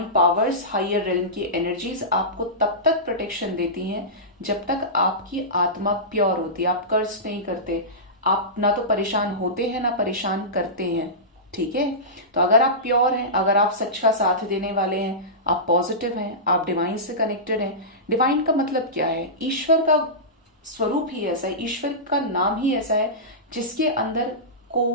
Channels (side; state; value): both; normal; correlation -0.18